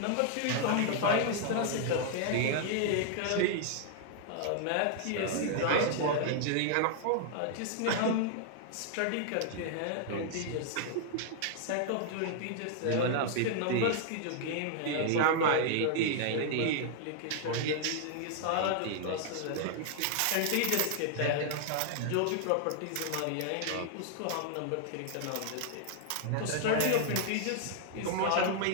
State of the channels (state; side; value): different; both; correlation 0.00